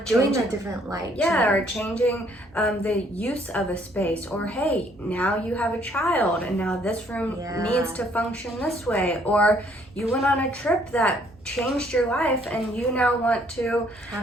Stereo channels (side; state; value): both; normal; correlation 0.64